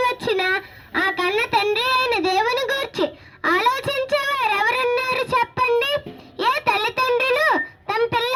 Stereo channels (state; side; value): identical; both; correlation 1.00